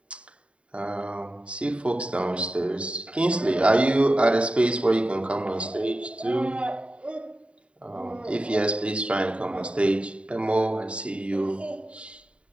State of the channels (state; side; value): late; left; 0.060 ms